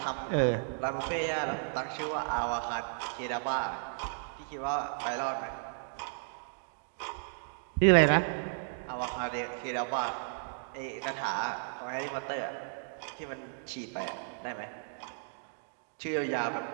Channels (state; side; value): silent; left; digital silence